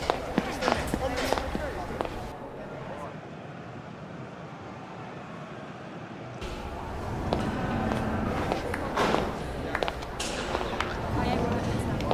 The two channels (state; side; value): identical; both; correlation 1.00